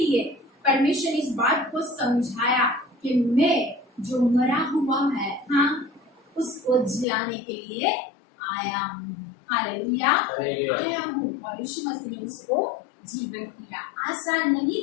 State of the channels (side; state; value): right; drops out; at 7.1 s